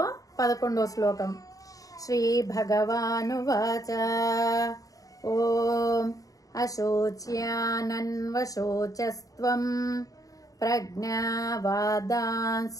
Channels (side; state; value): right; late; 0.17 ms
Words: 11వ శ్లోకం. శ్రీ భగవానువాచ ఓం అశోచ్యానన్వశోచస్త్వం ప్రజ్ఞావాదాంశ్చ